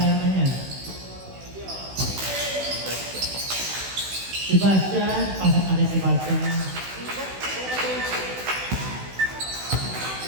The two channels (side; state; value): left; late; 16 ms